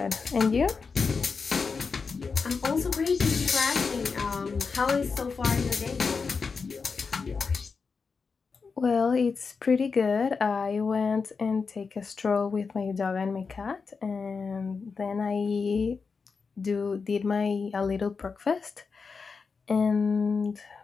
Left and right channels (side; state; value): right; quieter; 5.0 dB